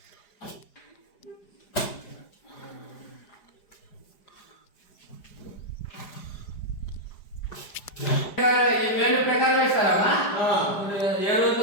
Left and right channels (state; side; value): late; right; 4.9 ms